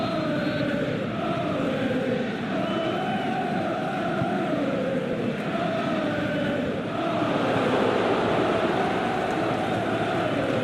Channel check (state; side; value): identical; both; correlation 1.00